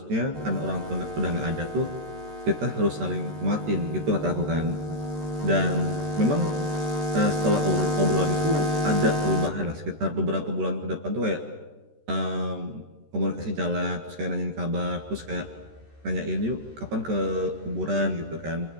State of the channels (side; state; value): left; late; 13 ms